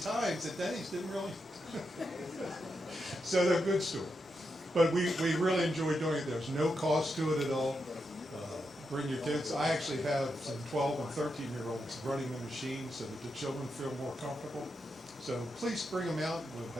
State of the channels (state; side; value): normal; both; correlation 0.85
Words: that Denny's didn't really. So they're good stories. But we really enjoy doing it. There's no cost to it at all. Bring your kids. I actually have some 12 and 13-year-olds running the machine so that the children feel more comfortable. So please bring them out. We'll